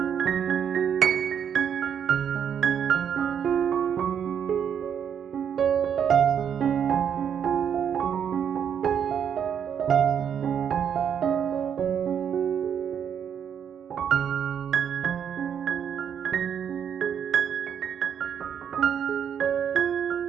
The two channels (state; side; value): quieter; left; 8.2 dB